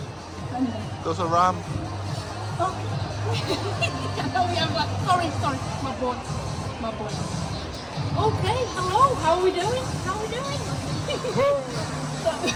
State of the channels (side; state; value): both; identical; correlation 1.00